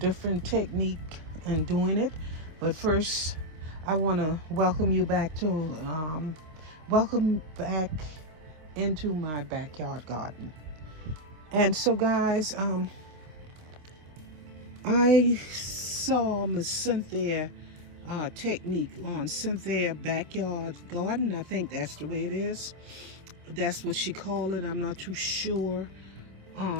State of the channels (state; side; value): late; left; 26 ms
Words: technique in doing it. But first, I want to welcome you back to welcome back into my backyard garden. And so, guys, I saw Miss Cynthia technique on Cynthia Backyard Garden. I think that's the way it is. That's what she called it. I'm not too sure,